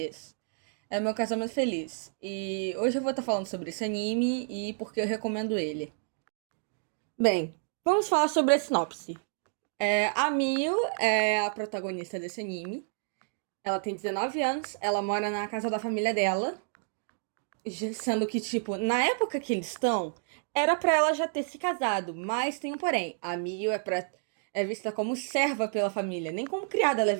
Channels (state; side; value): silent; left; digital silence